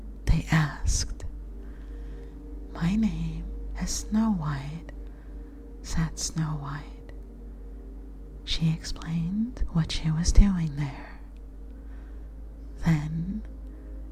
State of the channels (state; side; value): identical; both; correlation 1.00